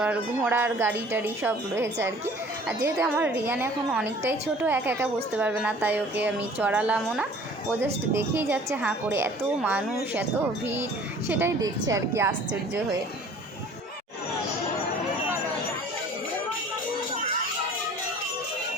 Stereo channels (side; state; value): both; normal; correlation 0.49